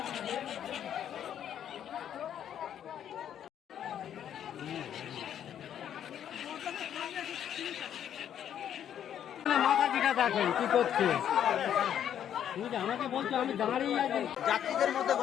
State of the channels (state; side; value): quieter; right; 9.8 dB